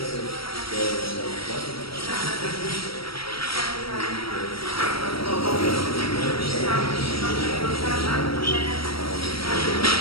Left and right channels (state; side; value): late; right; 0.75 ms